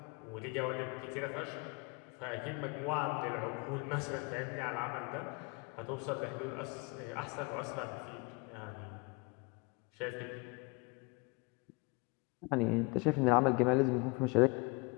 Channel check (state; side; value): quieter; right; 29.0 dB